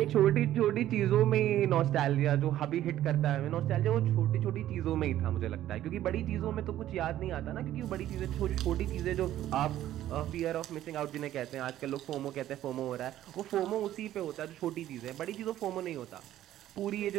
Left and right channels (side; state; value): left; quieter; 12.9 dB